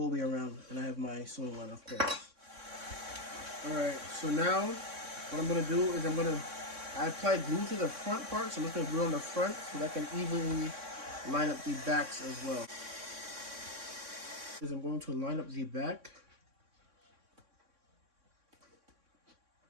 around. And I have my sewing line, of course. All right, so now what I'm gonna do is I applied glue to the front part, so I'm just gonna glue on the front so that I can evenly line up the backs as well. I'm going to line up the back.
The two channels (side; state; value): left; late; 3.6 ms